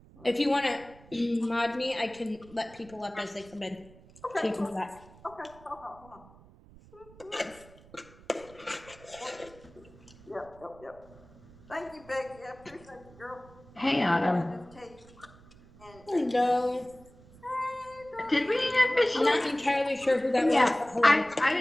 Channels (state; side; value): noise; right; rumble, 23 dB below the sound